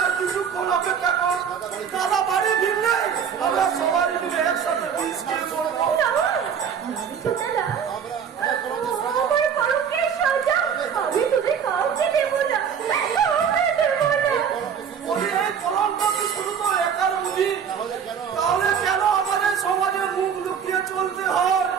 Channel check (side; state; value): left; quieter; 7.5 dB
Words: দাদা বাড়ি ফিরলে আমরা সবাই মিলে একসাথে তাহলে কেন আমাদের সমাজে মুখ লুকিয়ে চলতে হয়?